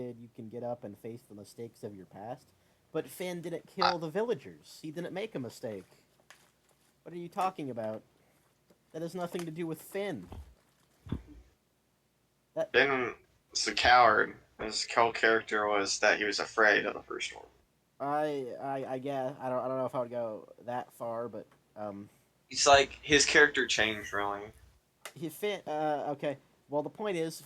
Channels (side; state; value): both; identical; correlation 1.00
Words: you can get up and face the mistakes of your past. But Finn didn't kill the villagers. He didn't make a mistake. What are you talking about? That has nothing to do with Finn. Finn was a coward. His whole character was that he was afraid of the first one. I guess I don't know if I would go that far, but It's like his character changed really. Okay. Well, the point is,